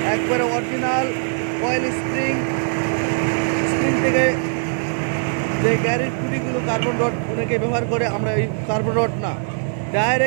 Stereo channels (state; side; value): silent; left; digital silence